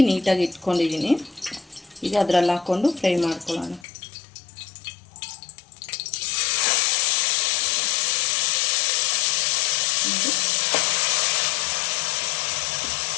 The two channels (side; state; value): right; drops out; at 3.9 s